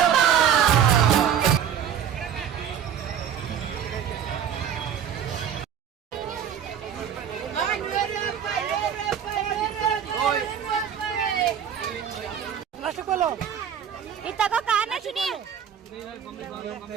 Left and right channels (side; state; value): left; quieter; 8.7 dB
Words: ಇತ್ತಗೋ ಕಾರಣ ಶುನಿ.